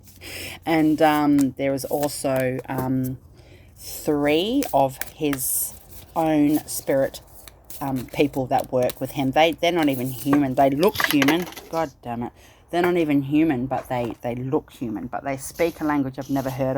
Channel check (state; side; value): identical; both; correlation 1.00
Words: And there is also 3 of his own spirit people that work with him. They're not even human. They look human. God damn it. They're not even human, but they look human. But they speak a language I've never heard